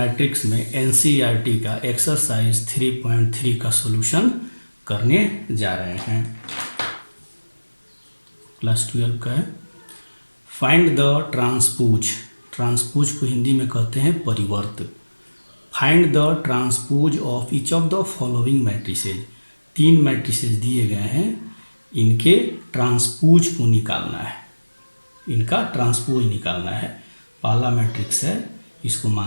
में एनसीईआरटी का एक्सरसाइज 3.3 का सॉल्यूशन करने जा रहे हैं। क्लास 12 का है। Find the transpose. ट्रांसपोज को हिंदी में कहते हैं परिवर्त। Find the transpose of each of the following matrices. 3 matrices दिए गए हैं, इनके ट्रांसपोज को निकालना है। इनका ट्रांसपोज निकालना है। पहला मैट्रिक्स है, इसको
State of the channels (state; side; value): inverted; both; correlation -1.00